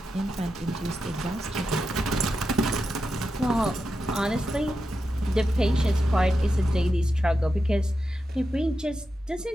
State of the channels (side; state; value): both; normal; correlation 0.88